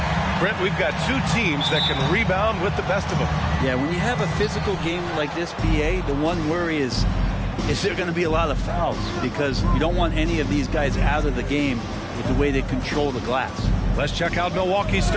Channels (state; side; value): identical; both; correlation 1.00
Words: Brent, we've got two teams that can rebound with the best of them. Yeah, when you have a physical game like this, BA, the one worry is there going to be a lot of fouls? Because you don't want any of these guys out of the game with the way they control the glass. Let's check out Milwaukee's